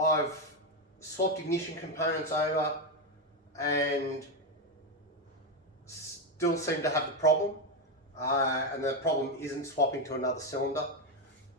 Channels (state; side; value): normal; both; correlation 0.08